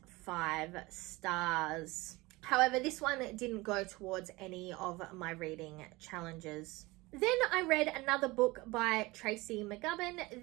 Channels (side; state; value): left; quieter; 22.0 dB